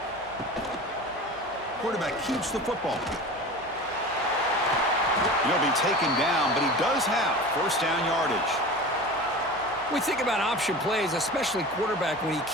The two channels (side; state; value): right; noise; hum, 24 dB below the sound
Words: Quarterback keeps the football. He'll be taken down, but he does have first down yardage. We think about option plays, especially quarterback when he